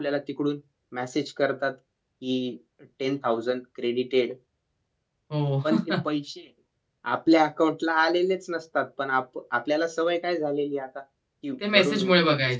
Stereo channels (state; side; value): identical; both; correlation 1.00